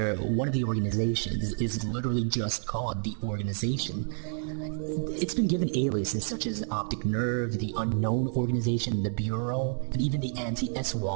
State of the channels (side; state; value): left; silent; 58 dB below the other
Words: one of the organizations is literally just called the organization. It's been given aliases such as Optic Nerve, the Unknown Organization, the Bureau, and even the